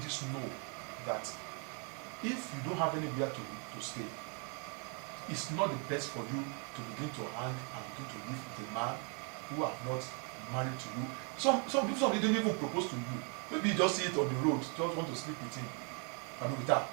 know that if you don't have anywhere to stay, it's not the best for you to begin to hang and begin to live with a man who have not married to you. Some people don't even propose to you. Maybe you just see it on the road, just want to sleep with him, I mean with her.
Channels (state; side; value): quieter; left; 37.6 dB